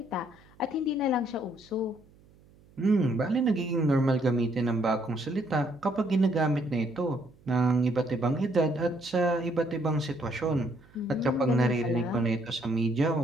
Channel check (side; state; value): right; noise; hum, 28 dB below the sound